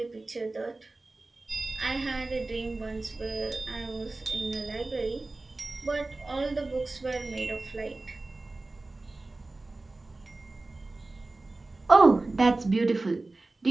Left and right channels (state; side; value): quieter; left; 3.1 dB